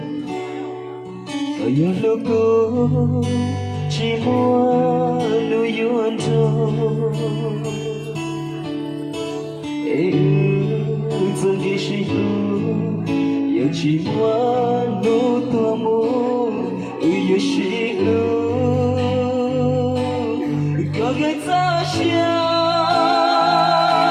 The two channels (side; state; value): both; identical; correlation 1.00